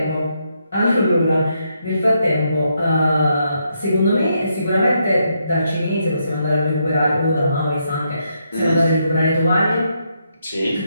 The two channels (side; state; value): both; inverted; correlation -0.79